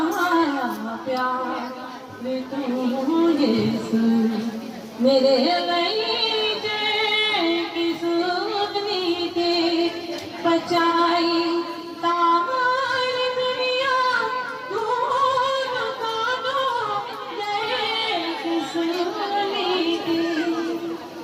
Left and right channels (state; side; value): identical; both; correlation 1.00